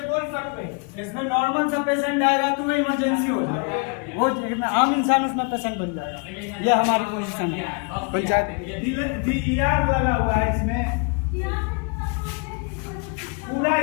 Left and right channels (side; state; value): right; quieter; 34.7 dB